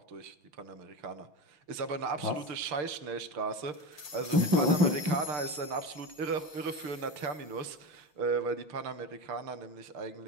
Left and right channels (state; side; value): late; left; 6.7 ms